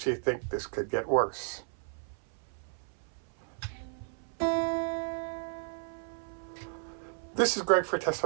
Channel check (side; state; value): left; silent; 56 dB below the other